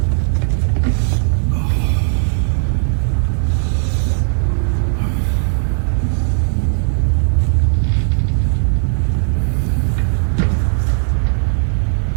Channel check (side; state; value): left; silent; digital silence